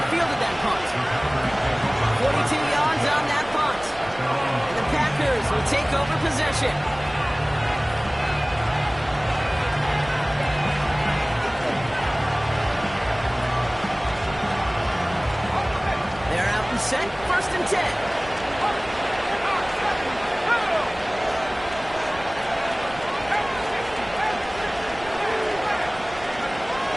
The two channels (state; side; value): noise; right; rumble, 18 dB below the sound